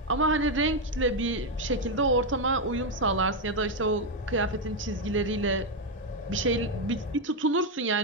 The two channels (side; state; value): both; normal; correlation 0.04